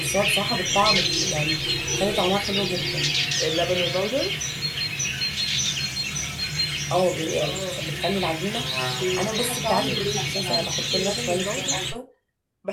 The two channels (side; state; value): both; identical; correlation 1.00